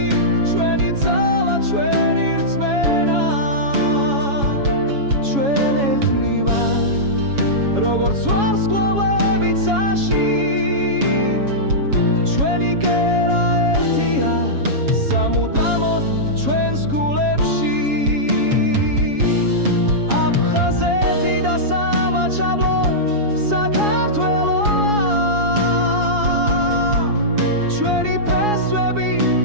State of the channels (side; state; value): left; late; 7.2 ms